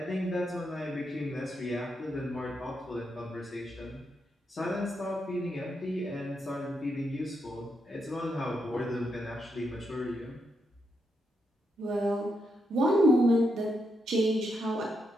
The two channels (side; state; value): both; normal; correlation 0.82